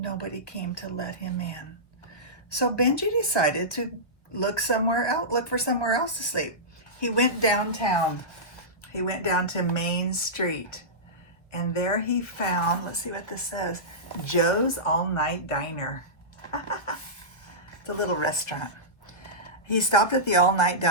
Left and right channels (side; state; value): right; late; 1.4 ms